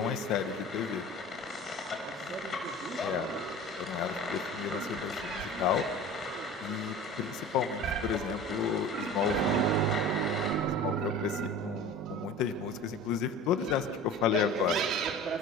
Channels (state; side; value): normal; both; correlation 0.38